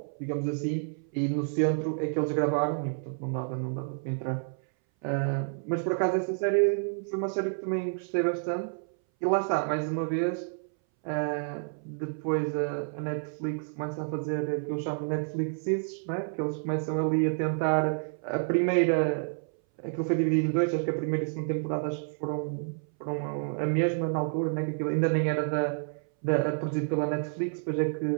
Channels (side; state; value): left; silent; 58 dB below the other